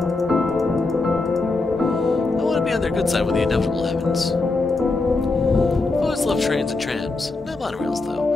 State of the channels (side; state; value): right; quieter; 3.4 dB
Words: I want to be on their good side when the inevitable happens. I've always loved trains and trams. Not monorails,